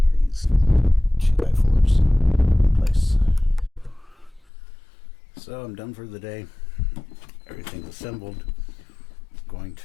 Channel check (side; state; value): right; drops out; at 4.5 s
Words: These 2x4s in place. So I'm done for the day. Everything's assembled. Going